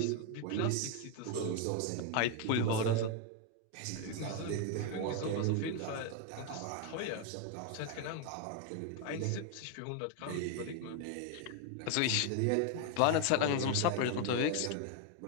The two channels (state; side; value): different; both; correlation 0.01